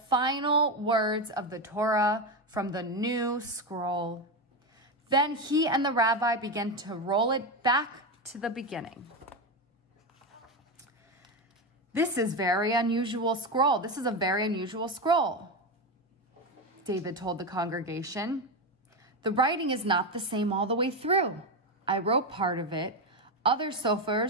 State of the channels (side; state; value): both; normal; correlation 0.13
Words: words of the Torah from the new scroll. Then he and the rabbi began to roll it back to the beginning. This is a very unusual scroll, David told the congregation. "The writing is not the same all the way through. I wrote part of it. Other